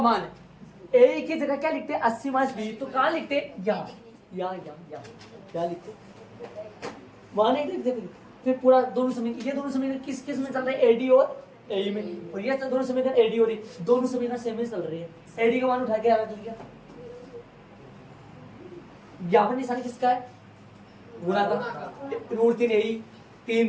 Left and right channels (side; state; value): both; identical; correlation 1.00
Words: ए की जगह क्या लिखते हैं, 80 माइनस बी, तो कहाँ लिखते, यहाँ क्या लिखते, वहां नहीं लिखते। फिर पूरा दोनों समीकरण, ये दोनों समीकरण किस में चल रहे हैं, एडी और ए में, और ये दोनों समीकरण एडी और दोनों समीकरण सेम ही चल रही है। एडी का मान उठा के रख लिया, यहाँ पर निशान किसका है, गुणा का, √3 ए,